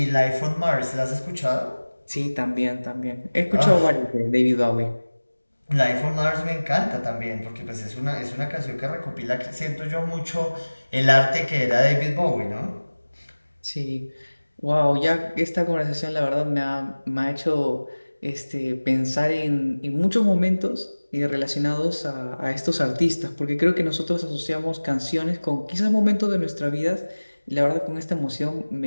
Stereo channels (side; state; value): both; inverted; correlation -1.00